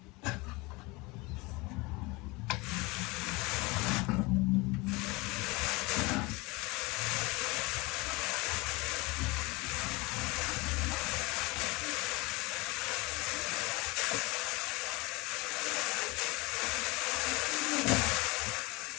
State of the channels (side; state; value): right; quieter; 24.7 dB